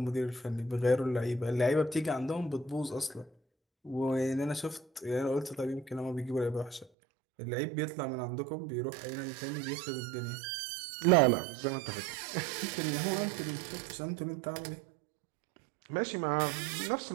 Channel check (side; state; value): left; drops out; at 6.9 s